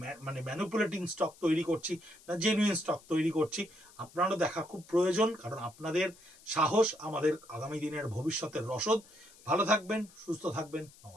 ম্যানিপুলেটিং স্টক তৈরি করছি না জেনুইন স্টক তৈরি করছি। আপনারও দেখা খুব প্রয়োজন, কারণ আপনাদের সাহস আমাদের আগামী দিনের ভবিষ্যতের রসদ। ভালো থাকবেন, সুস্থ থাকবেন,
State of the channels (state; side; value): noise; left; hiss, 24 dB below the sound